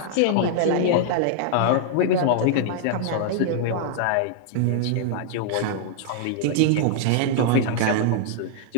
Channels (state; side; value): different; both; correlation 0.00